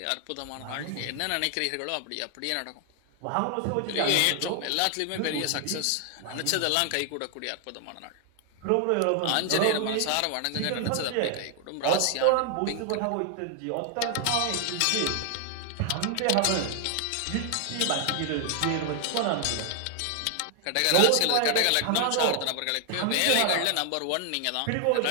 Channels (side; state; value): both; different; correlation 0.00